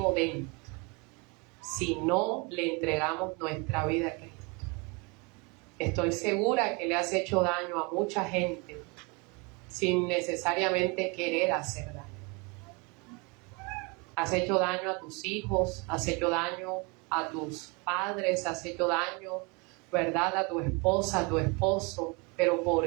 dentro si no le entregamos nuestra vida a Cristo. Estoy segura que le has hecho daño a mucha gente sin necesariamente querer hacer daño. Has hecho daño a tus hijos, has hecho daño a tus padres, has hecho daño, ¿verdad?, a tu esposa, a tu esposo. Pero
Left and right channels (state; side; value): quieter; left; 29.9 dB